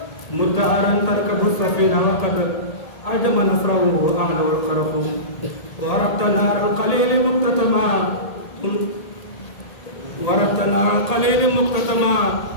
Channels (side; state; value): right; late; 1.8 ms